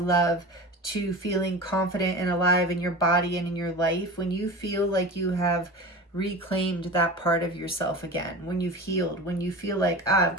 to feeling confident and alive in your body and in your life. When you feel like you have reclaimed that part of yourself again, when you've healed, when you feel like, I've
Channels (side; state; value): both; normal; correlation 0.31